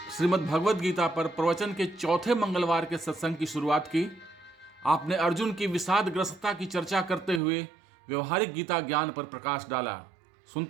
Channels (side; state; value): left; drops out; at 7.4 s